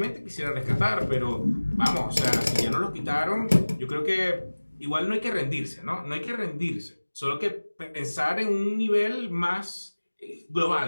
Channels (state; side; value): inverted; both; correlation -1.00